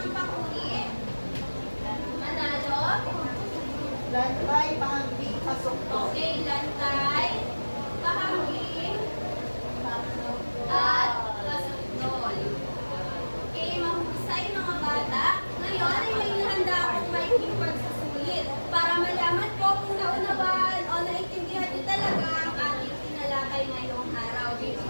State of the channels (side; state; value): both; inverted; correlation -1.00